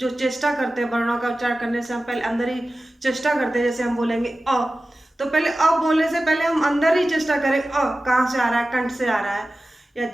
चेष्टा करते हैं वर्णों का उच्चार करने से, हम पहले अंदर ही चेष्टा करते हैं। जैसे हम बोलेंगे अ, तो पहले अ बोलने से पहले हम अंदर ही चेष्टा करें, कहाँ से आ रहा है, कंठ से आ रहा है या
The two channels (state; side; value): normal; both; correlation 0.95